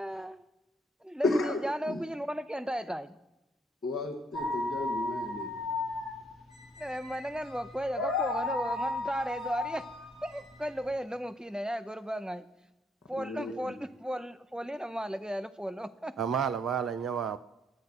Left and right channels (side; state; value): both; normal; correlation 0.70